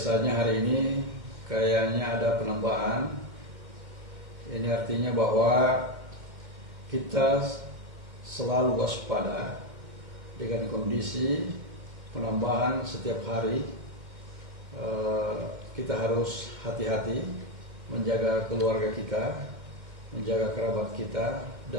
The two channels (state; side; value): late; left; 2.2 ms